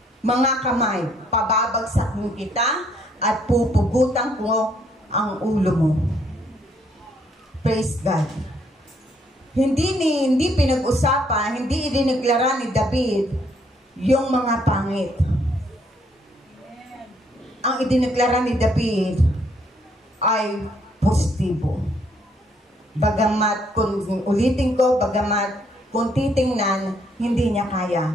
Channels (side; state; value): both; normal; correlation 0.69